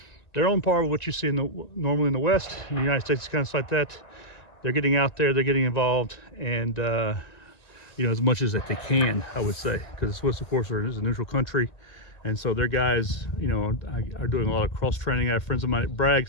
they're on par with what you see normally in the West. In the United States, it's kind of like that. They're getting out there, they're getting involved, and you know, as much as that they can, I would say, because the Swiss, of course, is a neutral country, and so their guys, you know, are doing a lot of cross training. I have friends of mine at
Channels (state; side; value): late; right; 1.9 ms